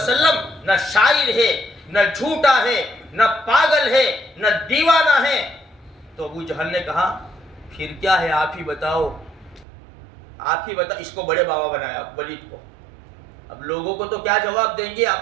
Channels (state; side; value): drops out; left; at 9.7 s